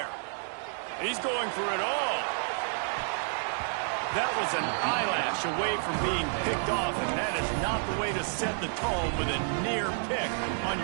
He's going for it all. That was an eyelash away from being picked off, and that is not the way to set the tone with a near pick on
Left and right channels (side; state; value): left; silent; 58 dB below the other